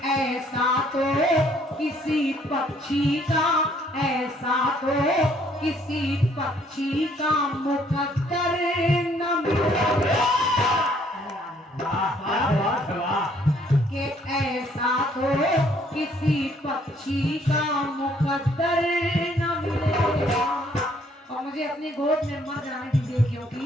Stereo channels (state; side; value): normal; both; correlation 0.64